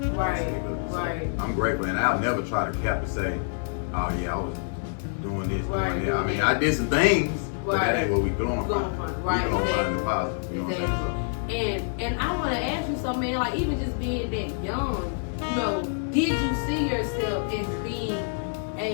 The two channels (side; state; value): right; silent; 60 dB below the other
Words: Right. I'm grateful, and I'll never try to cap and say, oh yeah, I was doing this, doing that. I mean, I did some things, but that ain't what we going from. Right. We going find the positive. You know what I'm saying? And I want to ask you something, man. Like, even just being that young, you know, did you see yourself as being